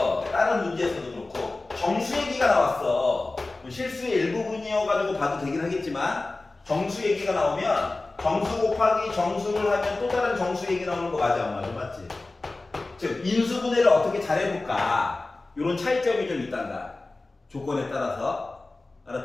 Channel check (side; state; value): right; quieter; 3.2 dB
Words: 다른 문제에서도 그렇고 정수 얘기가 나왔어. 실수의 일부분이어가지고 봐도 되긴 하겠지만 정수 얘기가 나오면 정수 곱하기 정수를 하면 또 다른 정수 얘기 나오는 거 맞아, 안 맞아? 맞지? 즉 인수분해를 어떻게 잘해볼까, 이런 차이점이 좀 있단다, 조건에 따라서.